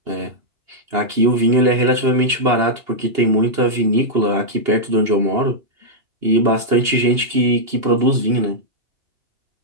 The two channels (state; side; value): late; left; 2.9 ms